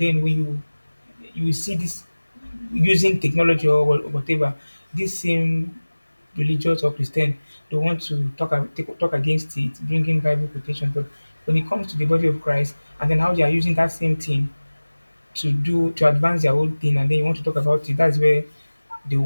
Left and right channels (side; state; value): both; inverted; correlation -1.00